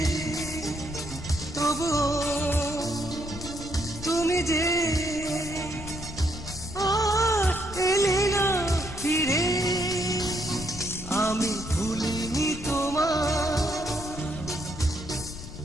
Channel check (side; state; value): left; noise; rumble, 11 dB below the sound